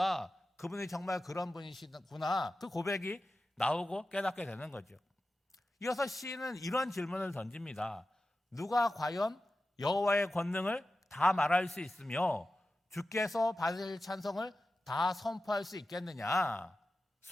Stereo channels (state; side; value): normal; both; correlation 0.93